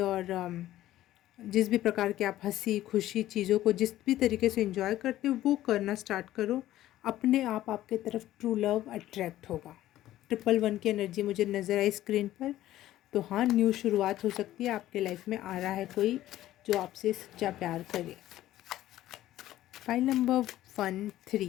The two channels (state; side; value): quieter; right; 14.2 dB